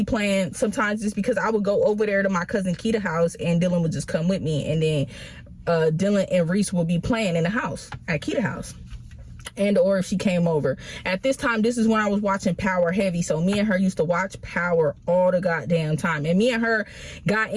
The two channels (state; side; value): identical; both; correlation 1.00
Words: playing sometimes is because I would go over there to my cousin Keita's house and Dylan would just come with me, and then Dylan and Reese would be playing in the house at Keita's house. And or if she came over. At this time, this is when I was watching Power heavy, so me and her used to watch Power all the goddamn time, and me and her got